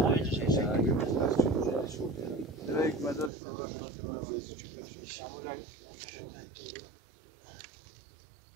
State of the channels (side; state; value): left; drops out; at 3.3 s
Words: şey. Direkt mezar şu uğraşına